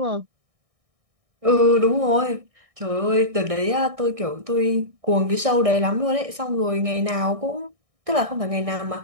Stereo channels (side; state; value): left; late; 1.6 ms